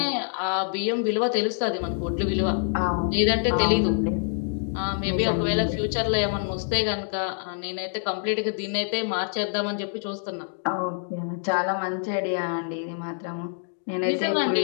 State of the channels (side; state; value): right; silent; digital silence